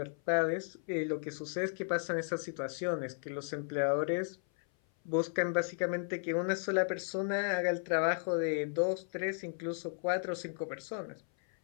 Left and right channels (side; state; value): right; silent; 55 dB below the other